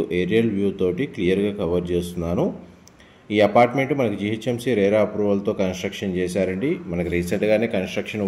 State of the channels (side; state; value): both; identical; correlation 1.00